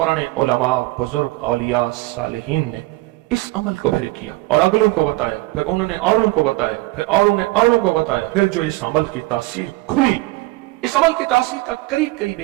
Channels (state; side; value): quieter; left; 20.6 dB